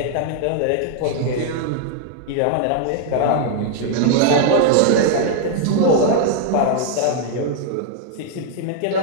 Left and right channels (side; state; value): both; different; correlation 0.00